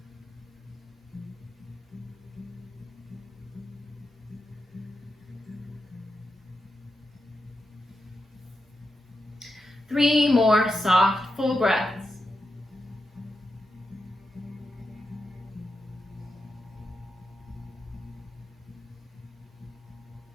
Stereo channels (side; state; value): both; normal; correlation 0.88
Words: Three more soft, full breaths.